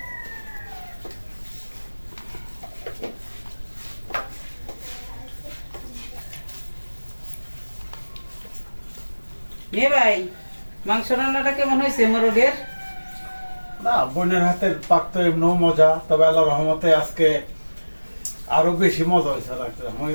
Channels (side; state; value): both; inverted; correlation -1.00